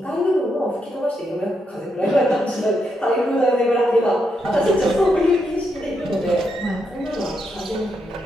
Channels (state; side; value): normal; both; correlation 0.81